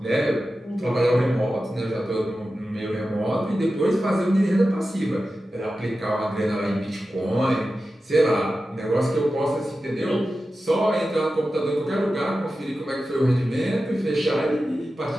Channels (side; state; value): both; normal; correlation 0.93